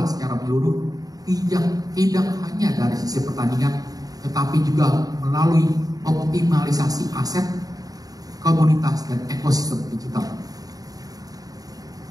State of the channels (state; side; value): late; left; 0.18 ms